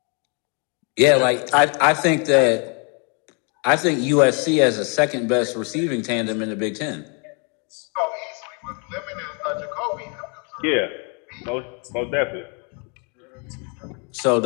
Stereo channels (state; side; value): quieter; right; 35.6 dB